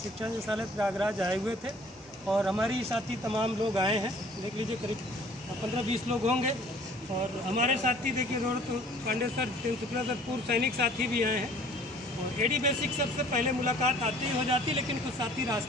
शिक्षा निदेशालय प्रयागराज आए हुए थे और हमारी साथी तमाम लोग आए हैं। देख लीजिए करीब 15-20 लोग होंगे। और हमारे साथी देखिए रोहित पांडे सर, जितेंद्र शुक्ला सर, पूर्व सैनिक साथी भी आए हैं। और एडी बेसिक सबसे पहले मुलाकात आती ही हो जाती, लेकिन कुछ साथी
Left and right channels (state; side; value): normal; both; correlation 0.53